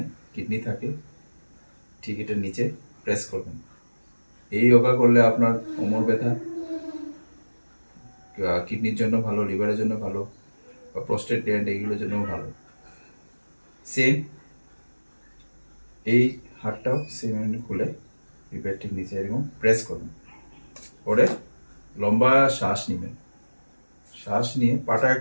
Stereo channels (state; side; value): inverted; both; correlation -1.00